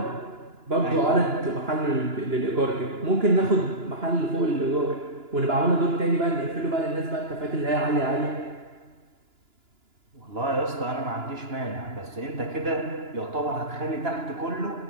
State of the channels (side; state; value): left; late; 2.9 ms